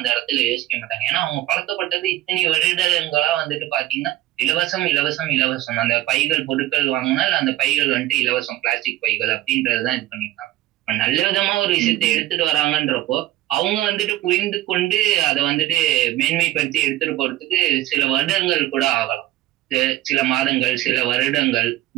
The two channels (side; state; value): left; quieter; 15.0 dB